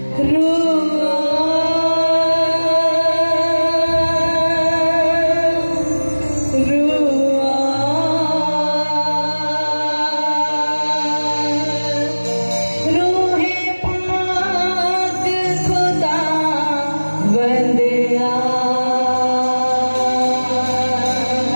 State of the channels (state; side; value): inverted; both; correlation -1.00